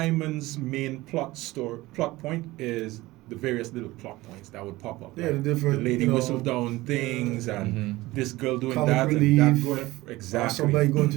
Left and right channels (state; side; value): quieter; left; 19.0 dB